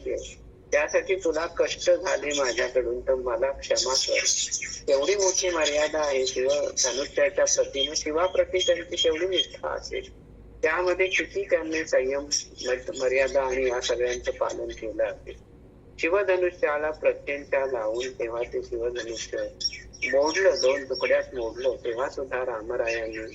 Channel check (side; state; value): both; identical; correlation 1.00